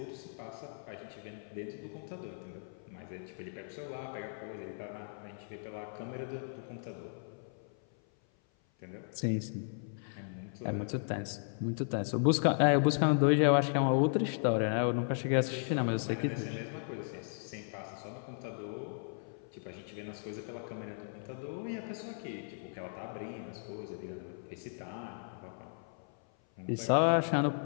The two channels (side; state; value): right; silent; 54 dB below the other